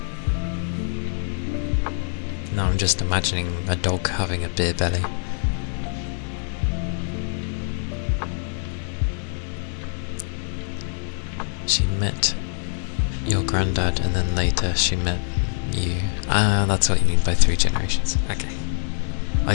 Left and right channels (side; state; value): right; silent; 63 dB below the other